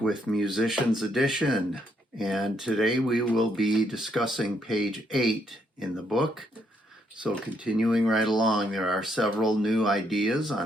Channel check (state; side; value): normal; both; correlation 0.74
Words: with Musicians Edition, and today we will be discussing page 8 in the book. So continuing right along, there are several new ideas